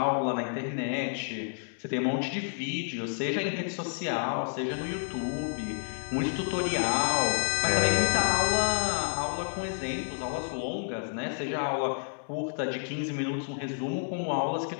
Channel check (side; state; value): right; silent; digital silence